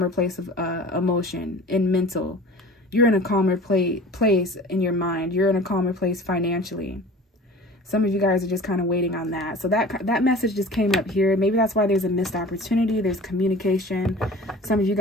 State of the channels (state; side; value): normal; both; correlation 0.41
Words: place of emotion and mental. You're in a calmer place in your mind. You're in a calmer place financially. Some of you guys are just kind of waiting on that. So that message just came up here. Maybe that's why there's a missed opportunity. There's communication. Some of you